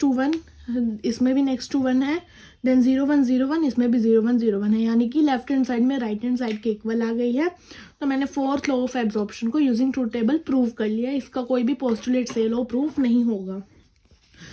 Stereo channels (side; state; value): both; identical; correlation 1.00